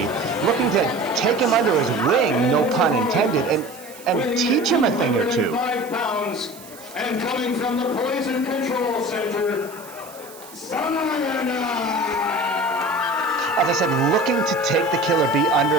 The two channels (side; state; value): right; noise; hiss, 19 dB below the sound